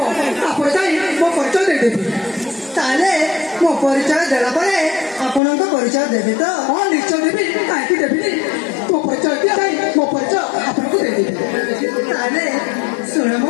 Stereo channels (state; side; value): drops out; right; at 5.4 s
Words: तापर जाई मो परिचय दे देबी ताले मो परिचय देला परे आपनक परिचय देबी तो हां निश्चय देबी काहे देबी तो परिचय दिया जाई मो परिचय आपनक दे देबी ताले सुन